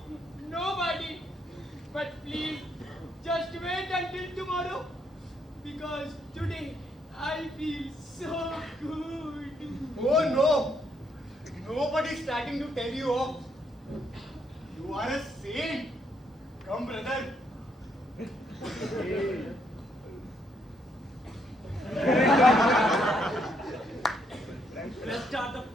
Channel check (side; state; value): both; normal; correlation 0.73